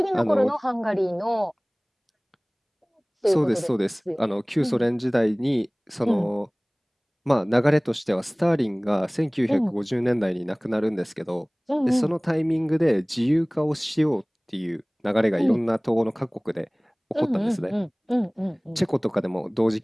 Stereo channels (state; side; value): identical; both; correlation 1.00